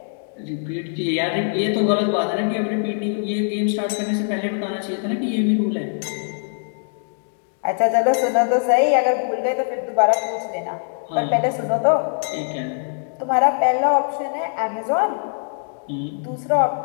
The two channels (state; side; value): silent; right; digital silence